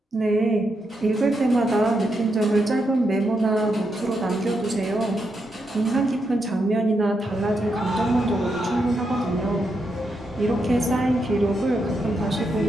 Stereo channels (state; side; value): normal; both; correlation 0.82